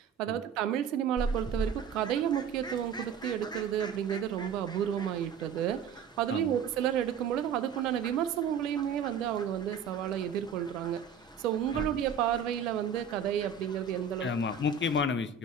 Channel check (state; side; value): quieter; left; 6.3 dB